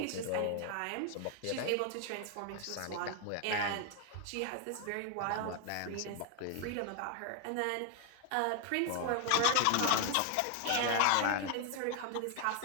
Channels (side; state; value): both; different; correlation 0.00